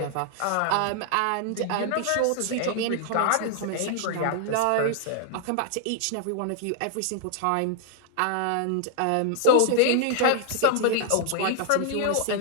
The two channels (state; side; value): different; both; correlation -0.01